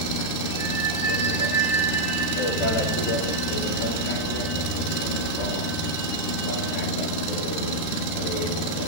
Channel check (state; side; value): late; right; 13 ms